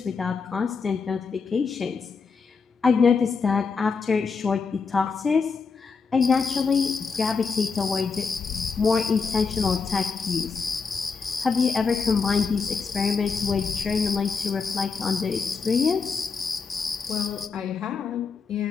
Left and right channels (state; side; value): quieter; right; 5.1 dB